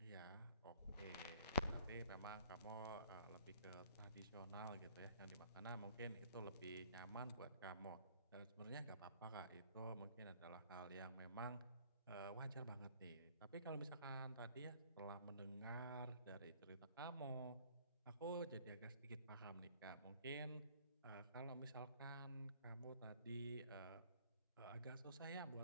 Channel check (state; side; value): inverted; both; correlation -0.55